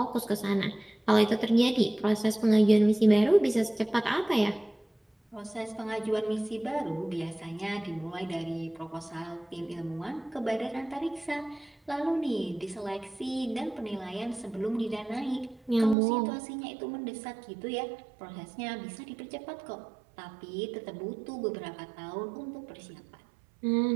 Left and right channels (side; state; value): left; drops out; at 16.0 s